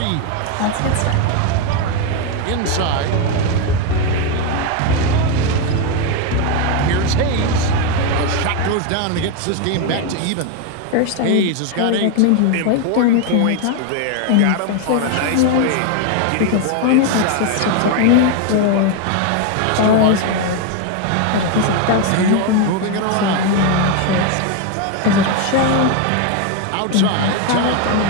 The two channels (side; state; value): both; different; correlation 0.01